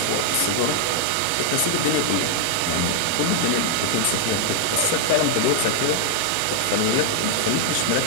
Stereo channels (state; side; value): different; both; correlation 0.00